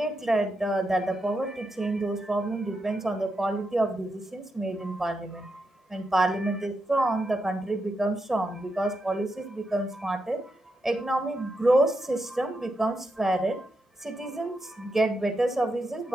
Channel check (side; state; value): both; normal; correlation 0.85